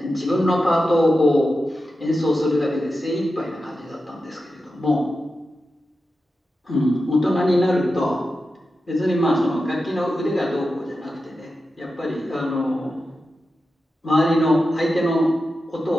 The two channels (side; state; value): both; normal; correlation 0.91